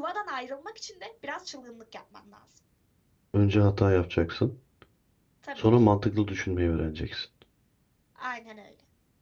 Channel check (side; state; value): both; identical; correlation 1.00